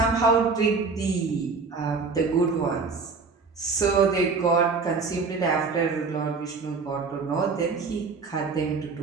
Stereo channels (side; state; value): left; quieter; 4.6 dB